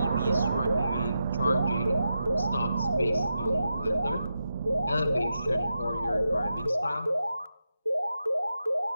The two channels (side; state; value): both; inverted; correlation -0.88